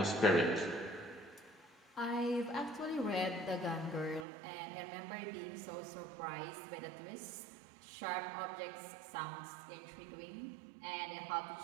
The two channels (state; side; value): drops out; left; at 4.2 s